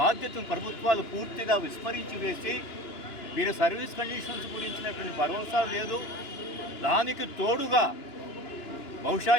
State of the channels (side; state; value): right; late; 2.9 ms